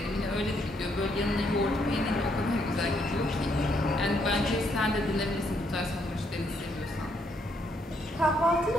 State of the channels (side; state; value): both; normal; correlation 0.73